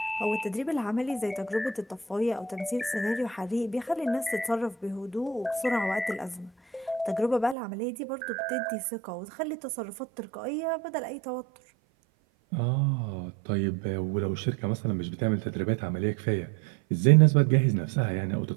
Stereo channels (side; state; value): left; drops out; at 7.6 s